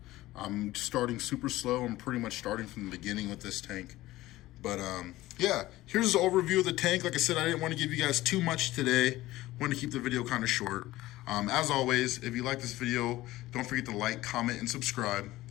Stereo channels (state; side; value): quieter; right; 17.0 dB